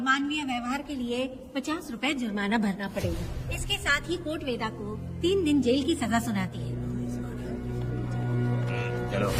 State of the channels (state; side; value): identical; both; correlation 1.00